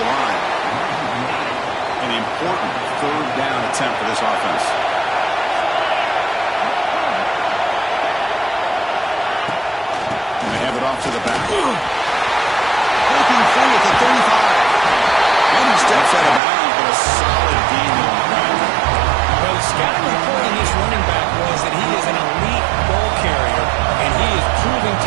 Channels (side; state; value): left; drops out; at 16.4 s